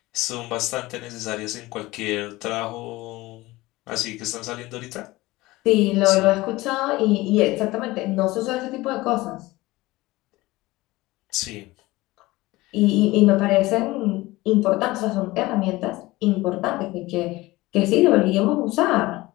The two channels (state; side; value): quieter; right; 19.7 dB